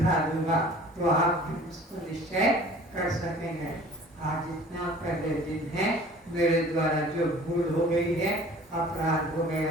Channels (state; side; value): normal; both; correlation 0.48